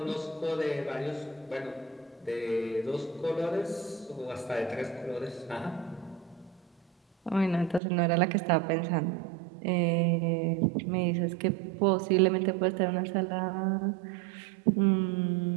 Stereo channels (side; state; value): left; drops out; at 7.8 s